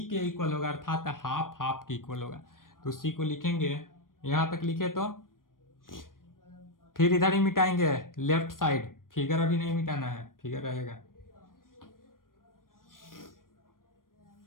के इक्वल होगा, अर्थात हाफ हाफ के इक्वल होगा। तो C को लिखेंगे, यहाँ तक लिखे तो फिर इधर ही मिटाएंगे लेफ्ट साइड, फिगर अभी नहीं मिटाना है, फिगर रहेगा।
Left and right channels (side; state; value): right; late; 0.91 ms